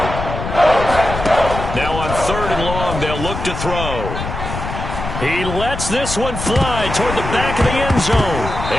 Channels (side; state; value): left; noise; rumble, 6 dB below the sound